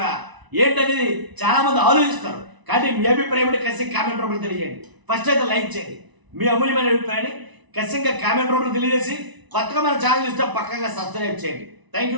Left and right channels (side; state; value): left; late; 1.0 ms